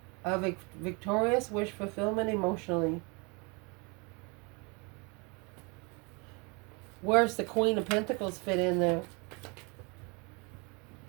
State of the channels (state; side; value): quieter; left; 30.5 dB